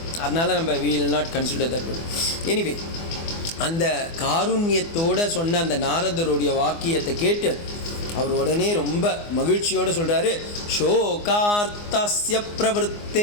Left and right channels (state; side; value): late; right; 24 ms